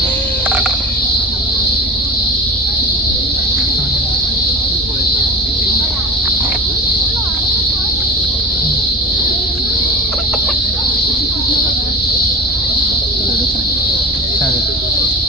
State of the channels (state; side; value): normal; both; correlation 0.33